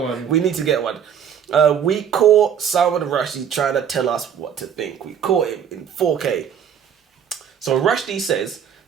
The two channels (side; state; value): left; quieter; 8.3 dB